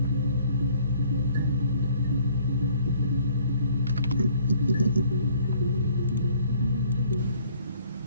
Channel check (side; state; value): both; inverted; correlation -0.59